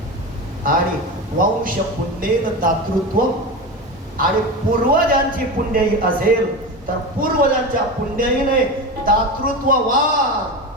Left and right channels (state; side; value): normal; both; correlation 0.23